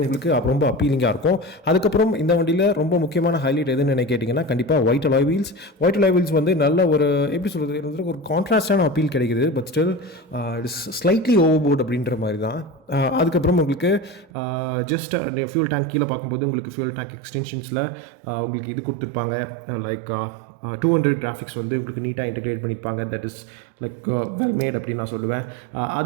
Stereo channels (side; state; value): left; drops out; at 14.3 s